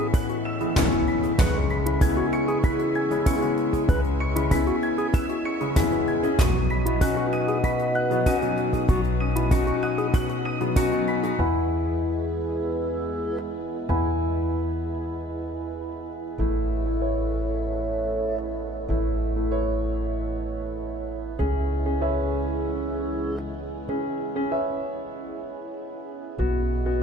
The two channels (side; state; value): both; normal; correlation 0.59